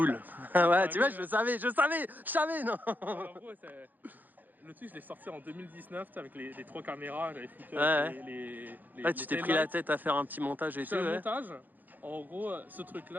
Ouais, tu vois, je savais, non. En gros, le truc, je l'ai sorti en 2019 avec les 3 caméras. J'avais foutu Ouais, tu t'es pris la tête à faire un petit montage et tout. Un montage. En gros, ce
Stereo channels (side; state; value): left; late; 0.085 ms